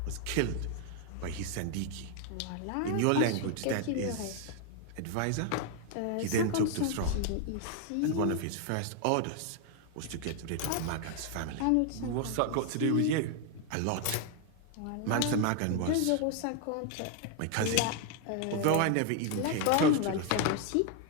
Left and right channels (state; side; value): different; both; correlation 0.00